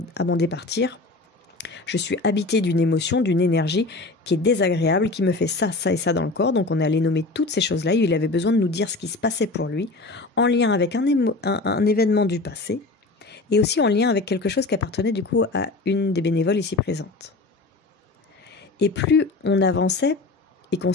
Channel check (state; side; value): quieter; right; 3.3 dB